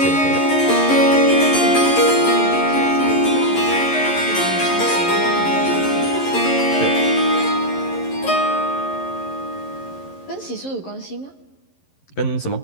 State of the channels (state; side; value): late; right; 11 ms